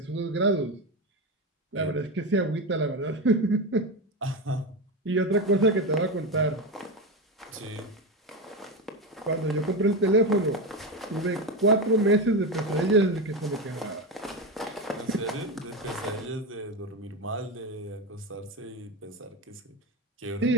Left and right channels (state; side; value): normal; both; correlation 0.17